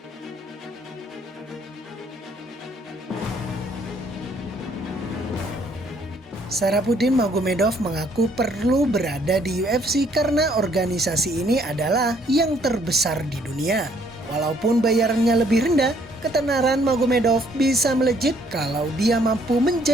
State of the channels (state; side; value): normal; both; correlation 0.65